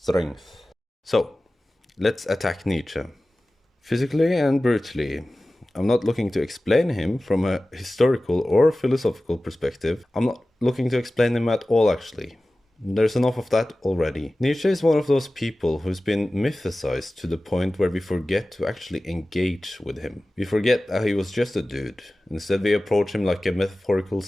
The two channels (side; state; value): both; normal; correlation 0.96